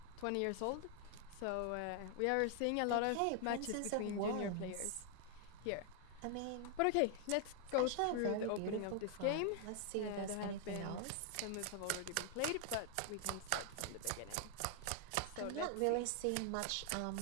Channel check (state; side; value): different; both; correlation 0.00